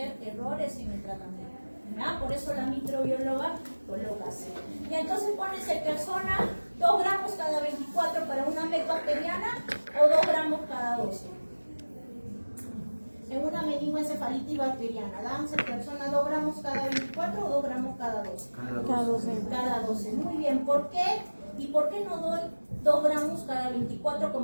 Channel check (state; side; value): inverted; both; correlation -1.00